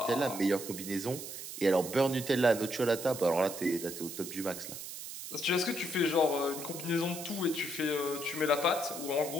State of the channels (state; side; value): noise; right; hiss, 9 dB below the sound